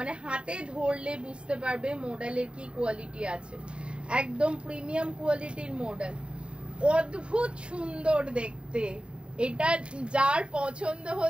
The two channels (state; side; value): late; left; 0.054 ms